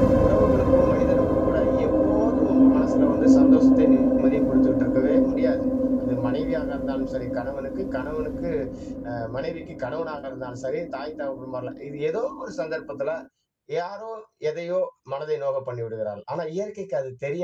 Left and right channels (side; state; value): both; identical; correlation 1.00